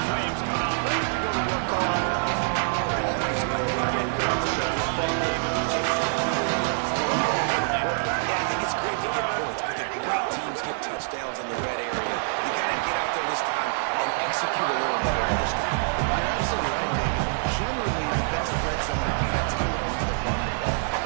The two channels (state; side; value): silent; left; digital silence